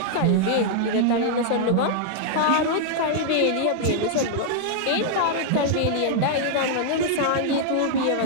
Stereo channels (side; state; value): both; different; correlation -0.01